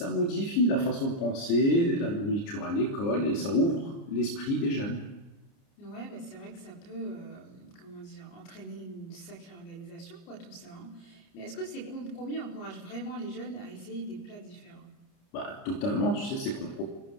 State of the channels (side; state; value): right; late; 29 ms